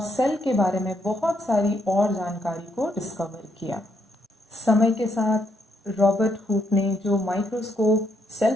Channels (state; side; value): normal; both; correlation 0.75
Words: सेल के बारे में बहुत सारी और जानकारी को डिस्कवर किया। समय के साथ रॉबर्ट हुक ने जो माइक्रोस्कोप